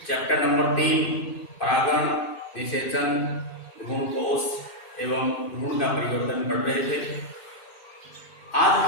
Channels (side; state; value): right; late; 2.5 ms